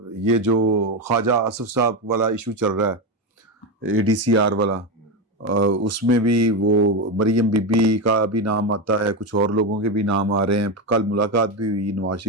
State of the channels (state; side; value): normal; both; correlation 0.13